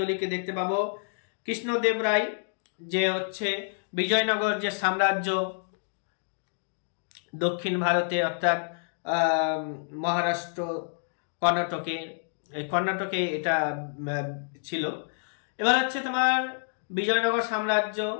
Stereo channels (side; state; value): right; silent; digital silence